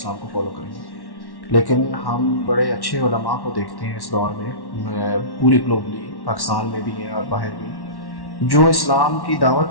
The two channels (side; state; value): right; late; 1.1 ms